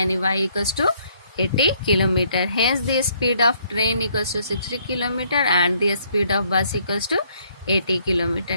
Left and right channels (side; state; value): both; inverted; correlation -0.66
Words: y equals to 80 kilometre. Hence the speed of train equals to 60 kilometre and the speed of bus equals to 80